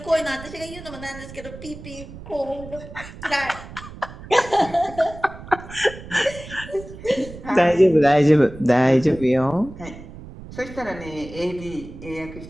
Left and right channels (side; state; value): right; noise; rumble, 15 dB below the sound